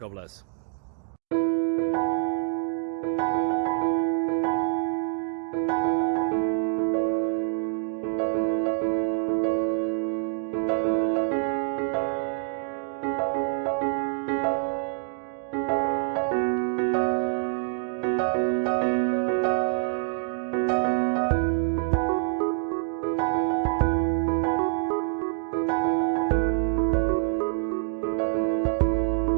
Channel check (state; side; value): silent; left; digital silence